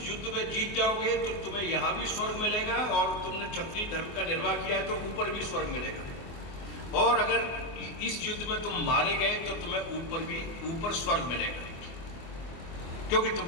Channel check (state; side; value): late; right; 24 ms